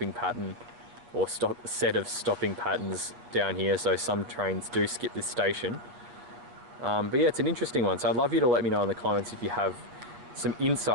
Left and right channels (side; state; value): left; late; 8.1 ms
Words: pattern or set of stopping patterns down here, so some trains do skip this station. But yeah, it's an interesting one, so I'd love you to let me know in the comments if you have some